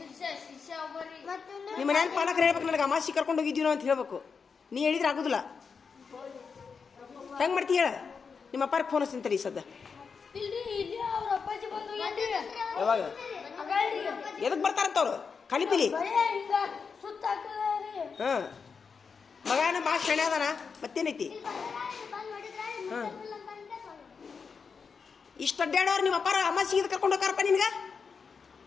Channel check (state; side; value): quieter; right; 5.6 dB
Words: ನಿಮ್ಮ ಮನ್ಯಾಗ ಪಾಲಕರು ಹೇಳ್ಬೇಕು ನನಗೆ ಅಮಾಸಿ ಕರ್ಕೊಂಡು ಹೋಗಿದ್ದೀವಿ ನಾವು ಅಂತ ಹೇಳ್ಬೇಕು. ನೀ ಹೇಳಿದ್ರೆ ಆಗೋದಿಲ್ಲ. ಹೆಂಗೆ ಮಾಡ್ತಿ ಹೇಳ? ನಿಮ್ಮ ಅಪ್ಪಾರಿಗೆ ಫೋನ್ ಹಚ್ತೀನಿ ತಡಿ ಸದ್ದ. ಯಾವಾಗ ಎದಕ್ಕೆ ಬರ್ತಾರಂತ ಅವ್ರು? ಕಲಿಪಿಲಿ ಹಿಂಗ ಸುತ್ತ ಹಾಕದ್ರಿ ಹಾಂ ಮಗನ ಭಾಳ ಶಣೆ ಅದಾನ ಮತ್ತೇನೈತಿ ಹಾಂ ಇಷ್ಟು ಅಡ್ಡಾಡೋರು ನಿಮ್ಮ ಅಪ್ಪಾರ ಅಮಾಸಿ ಇದು ಕರ್ಕೊಂಡು ಹೋಗಾರಪ್ಪ ನಿನ್ಗೆ